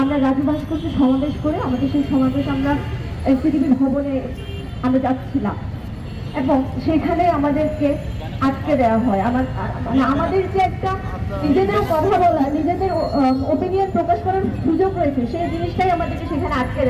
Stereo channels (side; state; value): both; identical; correlation 1.00